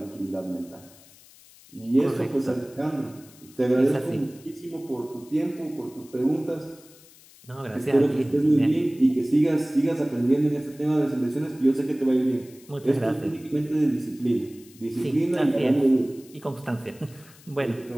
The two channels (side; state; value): left; noise; hiss, 24 dB below the sound